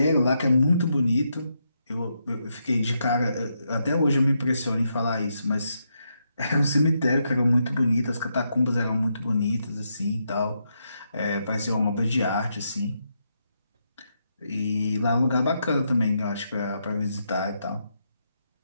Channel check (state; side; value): inverted; both; correlation -0.81